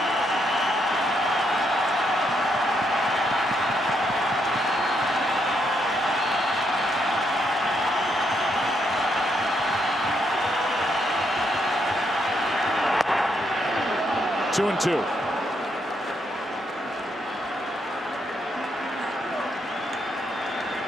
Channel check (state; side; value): normal; both; correlation 0.77